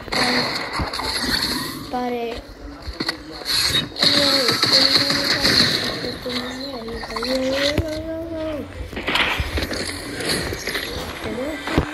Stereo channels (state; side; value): identical; both; correlation 1.00